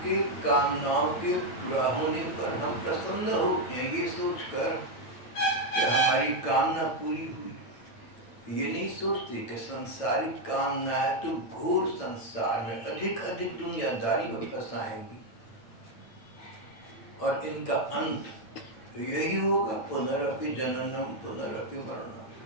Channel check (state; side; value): late; right; 9.0 ms